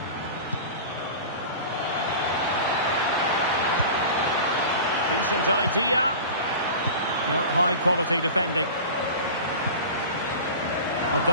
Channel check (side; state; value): both; inverted; correlation -0.35